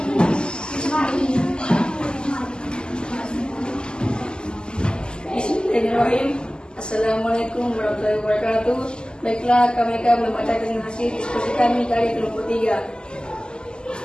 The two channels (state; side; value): late; right; 0.047 ms